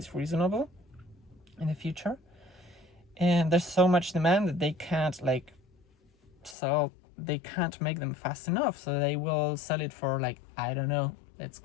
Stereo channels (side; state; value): right; drops out; at 6.6 s